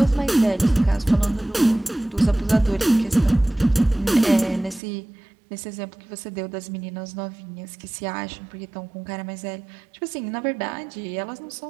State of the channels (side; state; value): left; drops out; at 4.8 s